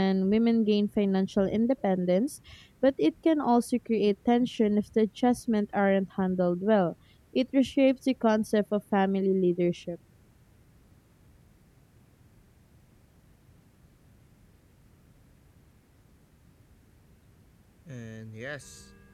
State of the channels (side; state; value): both; identical; correlation 1.00